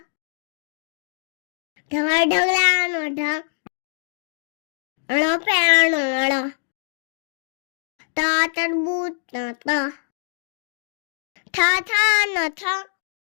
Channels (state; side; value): silent; right; digital silence